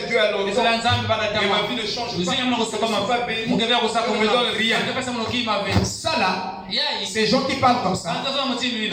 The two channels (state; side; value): identical; both; correlation 1.00